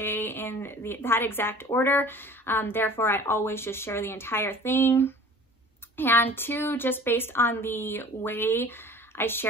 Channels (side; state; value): both; normal; correlation 0.46